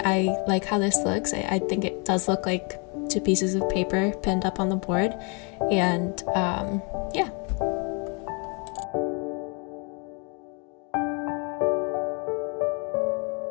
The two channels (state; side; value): quieter; right; 34.5 dB